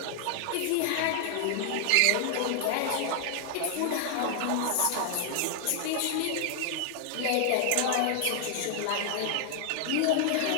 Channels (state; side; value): different; both; correlation 0.00